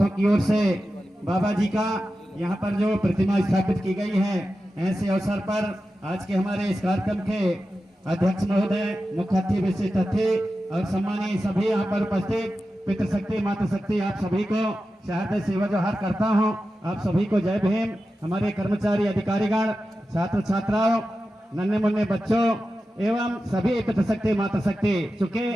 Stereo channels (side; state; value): both; normal; correlation 0.92